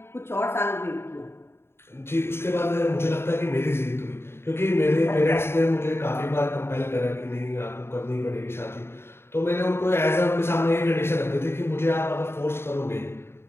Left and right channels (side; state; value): right; late; 0.12 ms